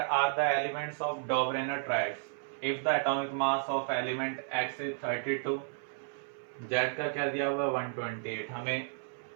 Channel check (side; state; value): left; silent; 56 dB below the other